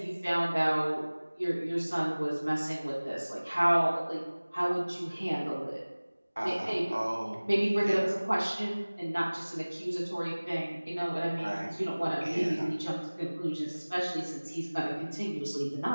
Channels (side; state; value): both; inverted; correlation -1.00